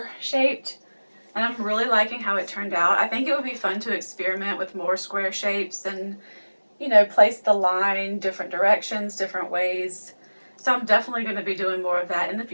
shaped, and I'm really liking how it turned out. I think it would be fun to experiment with more square shapes and, you know, place the line different directions, different ways. So I'm definitely going to be doing more of that in the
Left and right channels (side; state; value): both; inverted; correlation -1.00